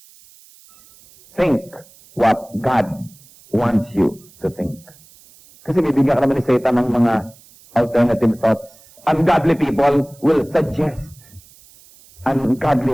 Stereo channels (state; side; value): noise; right; hiss, 26 dB below the sound